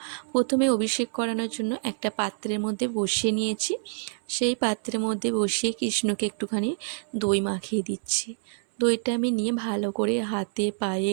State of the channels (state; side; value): silent; left; 60 dB below the other